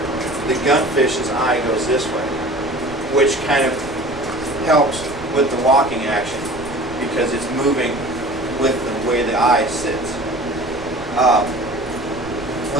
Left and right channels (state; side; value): noise; right; rumble, 17 dB below the sound